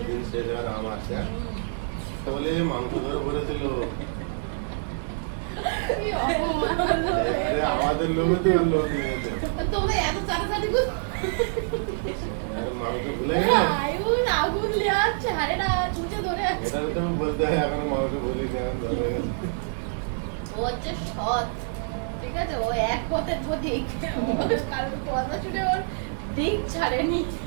দিন শেষ হওয়ার আম আছে, হ্যাঁ? তো বলে মাংস ধরে পড়েছিল, আমাদের লোভে তো লোক নিয়েছে। তোমরা এত চাটাচাটি করো। মাংস ভুলে গেলে আগুন লেয়াচ্ছে, হারে না চুচে ধরে এটা তো আমি বলতে হয়, এখন মাংস ভুলি এখন ধরে গেছে। ও হচ্ছে সৎ, ঠিক আছে, ও এক পথের প্রতীক, কারণ কথা শুনে ওর দিক ছাড়েনি,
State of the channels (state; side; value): silent; left; digital silence